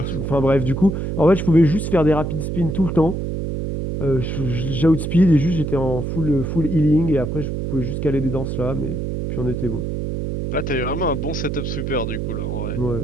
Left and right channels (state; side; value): noise; right; hum, 3 dB below the sound